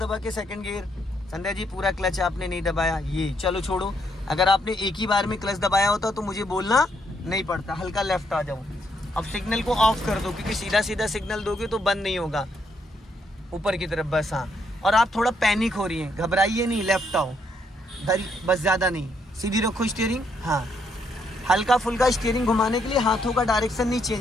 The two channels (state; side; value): normal; both; correlation 0.74